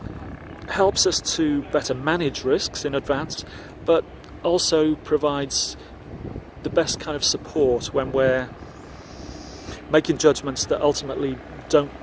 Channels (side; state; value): both; identical; correlation 1.00